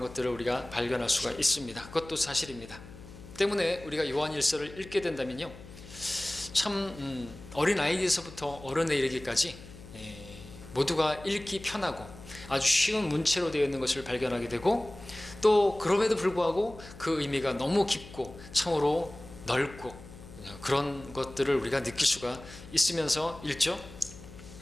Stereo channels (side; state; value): left; noise; hum, 17 dB below the sound